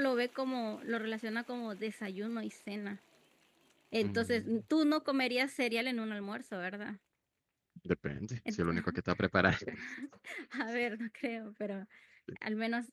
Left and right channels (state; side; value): identical; both; correlation 1.00